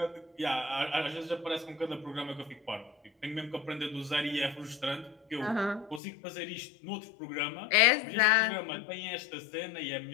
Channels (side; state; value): right; drops out; at 6.0 s